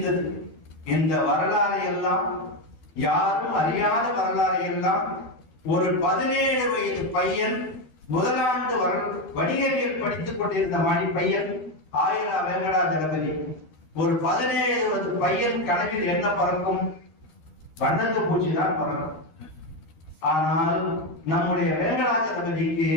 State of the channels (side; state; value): right; late; 13 ms